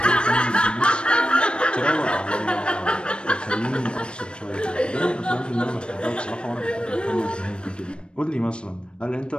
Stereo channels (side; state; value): right; late; 0.056 ms